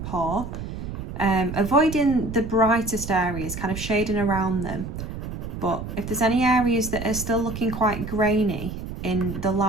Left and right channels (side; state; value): right; noise; rumble, 8 dB below the sound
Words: paw. Avoiding the brightest areas, kind of shading around them, but if there's any areas that are still looking quite grainy in the